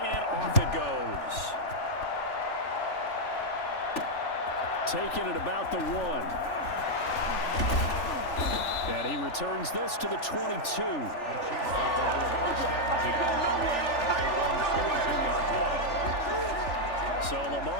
and off it goes. Taking it about the 1. And he returns this to the 22. So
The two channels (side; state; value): right; late; 3.4 ms